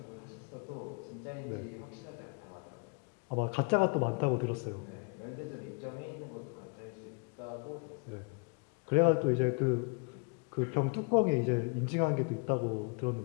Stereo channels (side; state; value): right; quieter; 34.5 dB